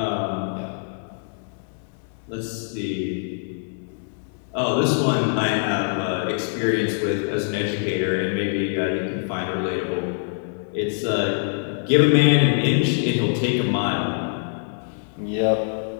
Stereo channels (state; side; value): silent; right; 61 dB below the other